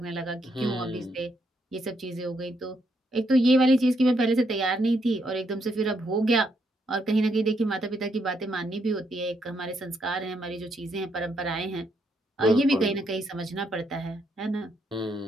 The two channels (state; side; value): normal; both; correlation 0.76